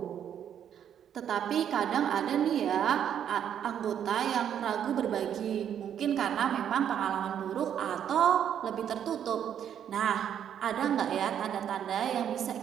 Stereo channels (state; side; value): quieter; left; 9.3 dB